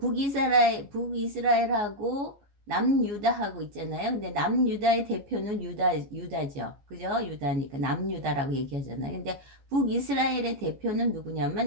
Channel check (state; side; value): late; left; 14 ms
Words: 북이스라엘하고 남유다하고 있잖아요. 근데 남유다의 대표는 유다죠. 그죠? 유다니까 남유다라고 얘기하잖아요. 근데 북이스라엘의 대표는